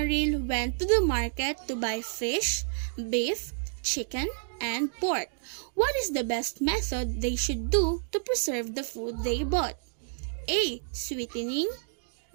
went to the market to buy fish, beef, chicken, and pork. What is the best method they should do to preserve the food they bought? A. Sweetening,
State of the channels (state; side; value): silent; left; digital silence